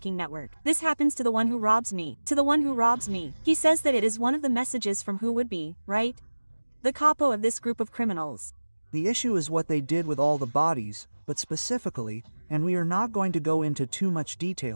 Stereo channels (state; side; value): inverted; both; correlation -1.00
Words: network. This happens to the one who robs me, to the one who robs me. He says that it is one of the messages from who would be, right? The capo of this group of criminals. The issue is what they did with all the bodies, but specifically, and we are not going to go into too much